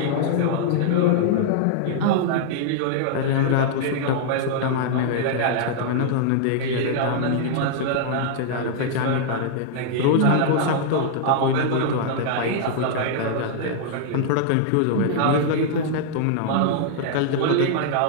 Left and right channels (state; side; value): different; both; correlation -0.01